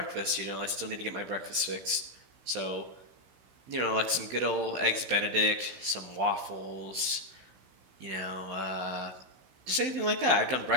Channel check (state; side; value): late; left; 15 ms